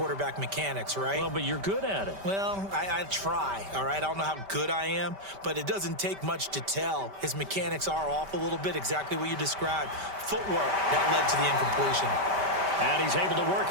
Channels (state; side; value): late; left; 5.1 ms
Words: mechanics, right? Well, but you're good at it. Well, I try, all right? I don't know how good I am, but it doesn't take much to tell. His mechanics are off a little bit, exactly what you described. Footwork, that led to the incompletion. And he's able to